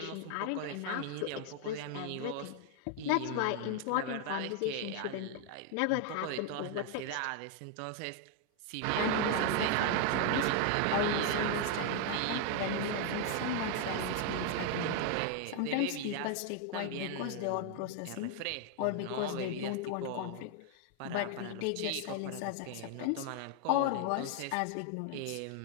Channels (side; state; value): both; different; correlation 0.00